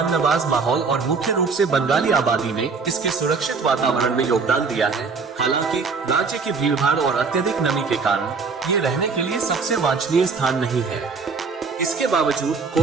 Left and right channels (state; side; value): quieter; left; 4.8 dB